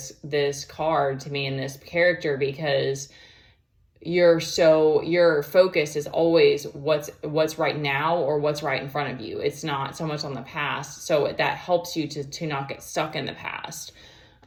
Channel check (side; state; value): both; identical; correlation 1.00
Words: card to me and this character, because your focus is always what's right now, or what's right in front of you. It's not so much on the past. So that helps you to not get stuck in the past.